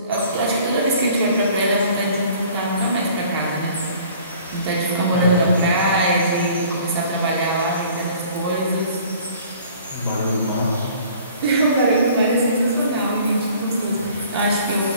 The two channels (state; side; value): inverted; both; correlation -0.51